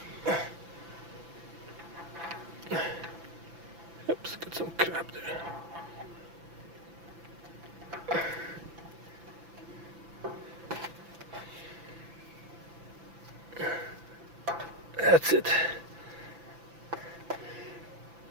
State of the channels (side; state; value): left; late; 5.9 ms